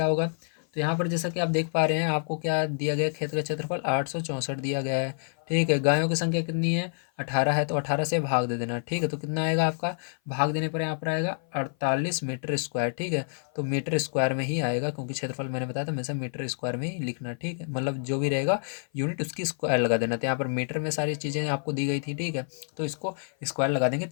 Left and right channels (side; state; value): right; silent; 56 dB below the other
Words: होगा। तो यहाँ पर जैसा कि आप देख पा रहे हैं, आपको क्या दिया गया, खेत का क्षेत्रफल 864 दिया गया है, ठीक है, गायों की संख्या कितनी है? 18 है, तो 18 से भाग दे देना। ठीक है, तो कितना आएगा आपका? भाग देने पर यहाँ पर आएगा 48 मीटर स्क्वायर। ठीक है, तो मीटर स्क्वायर में ही आएगा, क्योंकि क्षेत्रफल मैंने बताया था हमेशा मीटर स्क्वायर में ही लिखना। ठीक है, मतलब जो भी रहेगा यूनिट उसकी स्क्वायर लगा देना। तो यहाँ पर मीटर में सारी चीज़ें आपको दी गई थी। ठीक है, तो इसको स्क्वायर लगा देंगे